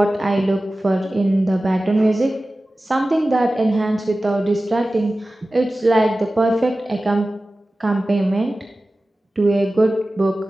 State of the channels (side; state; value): both; normal; correlation 0.96